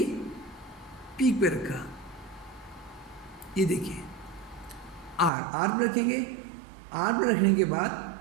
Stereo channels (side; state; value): left; drops out; at 5.3 s